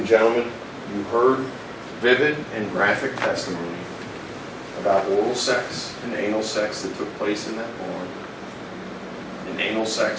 gentlemen, you heard vivid and graphic testimony about oral sex and anal sex that took place in that barn, and anal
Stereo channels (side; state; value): both; identical; correlation 1.00